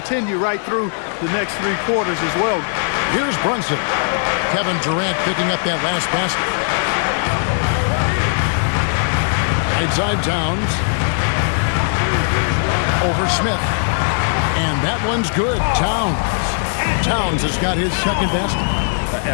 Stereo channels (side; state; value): right; silent; digital silence